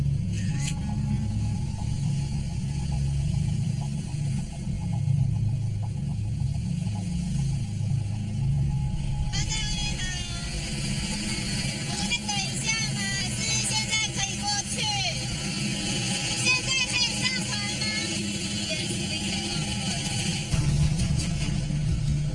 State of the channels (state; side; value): identical; both; correlation 1.00